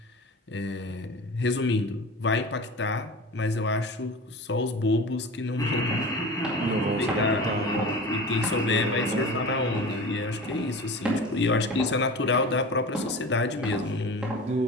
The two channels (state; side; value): normal; both; correlation 0.34